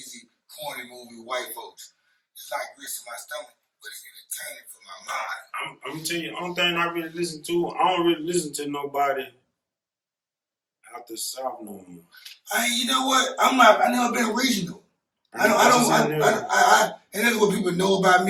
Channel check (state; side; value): identical; both; correlation 1.00